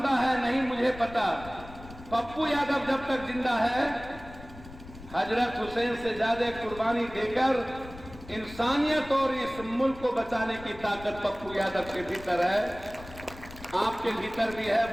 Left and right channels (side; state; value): left; noise; rumble, 16 dB below the sound